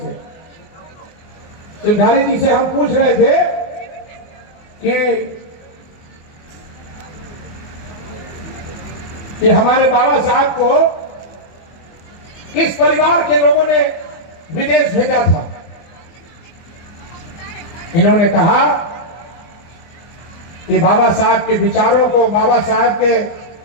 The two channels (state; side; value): late; right; 24 ms